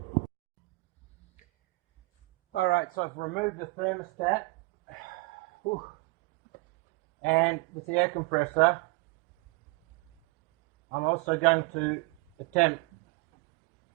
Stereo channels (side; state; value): left; quieter; 25.2 dB